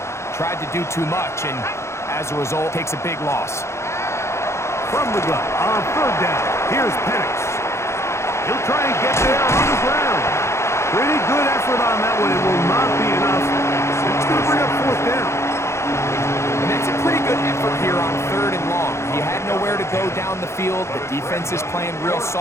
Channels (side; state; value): right; late; 0.13 ms